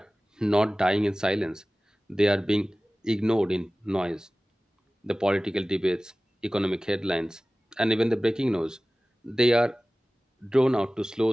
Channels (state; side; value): normal; both; correlation 0.97